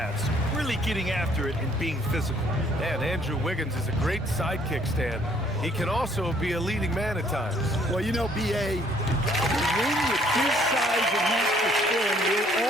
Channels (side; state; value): both; normal; correlation 0.62